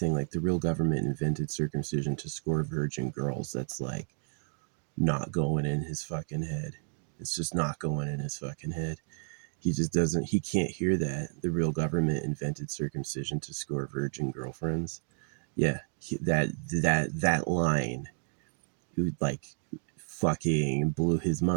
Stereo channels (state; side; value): silent; left; digital silence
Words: like the real government invented circumcision to score virgin girls. That's like not going in his fucking head. It's just not going in his fucking head. He just doesn't, he can't hear that the real government invented circumcision to score virgin girlfriends. Yeah, that line, like fucking blew his